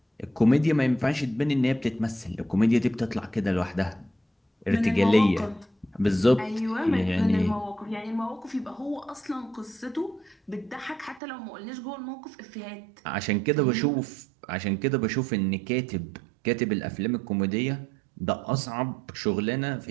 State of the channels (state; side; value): drops out; left; at 11.2 s